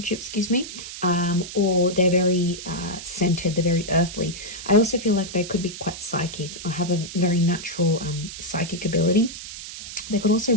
excuse me, or they're very centered, they're very earthly. I also feel like they could be quite psychic or have a very natural psychic ability. They could also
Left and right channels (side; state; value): right; noise; hiss, 11 dB below the sound